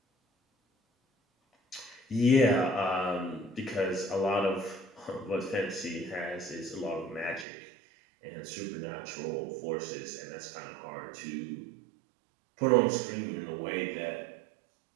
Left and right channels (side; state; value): left; drops out; at 7.5 s